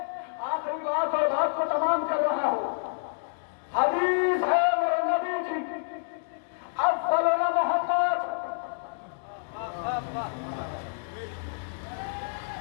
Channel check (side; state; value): right; silent; digital silence